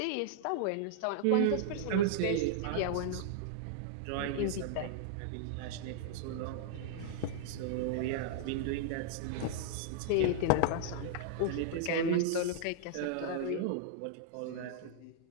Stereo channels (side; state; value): both; different; correlation -0.01